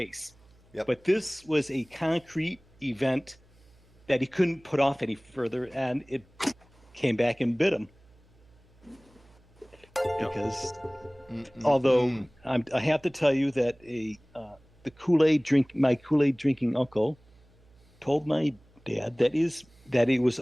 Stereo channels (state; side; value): noise; right; hum, 29 dB below the sound